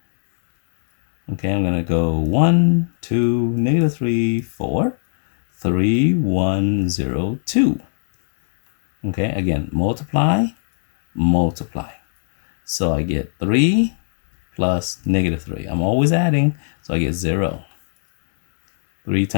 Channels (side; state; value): right; silent; digital silence